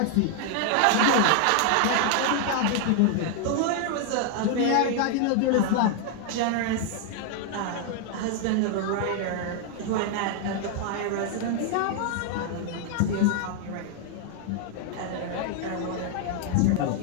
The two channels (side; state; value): both; different; correlation 0.00